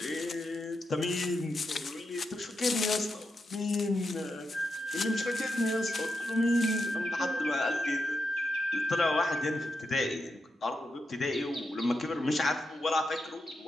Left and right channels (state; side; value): normal; both; correlation 0.86